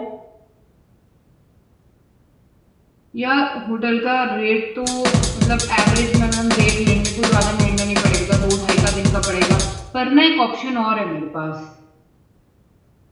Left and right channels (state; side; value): identical; both; correlation 1.00